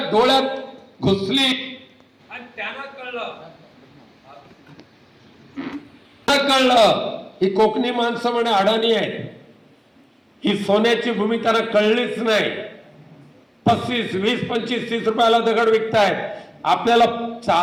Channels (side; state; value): both; identical; correlation 1.00